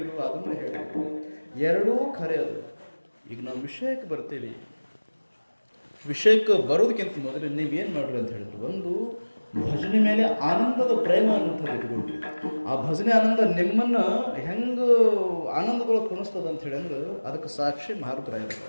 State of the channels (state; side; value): inverted; both; correlation -1.00